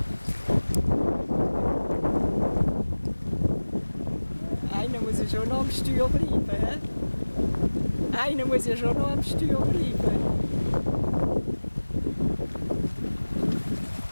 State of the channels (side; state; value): both; inverted; correlation -1.00